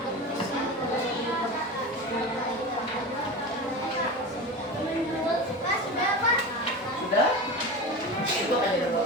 Sudah? Itu akan jadi apa?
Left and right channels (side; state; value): both; normal; correlation 0.27